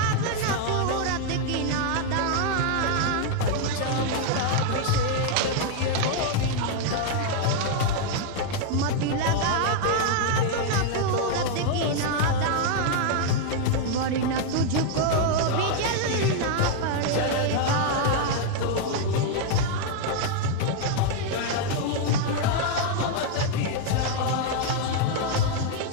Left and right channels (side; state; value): both; different; correlation 0.00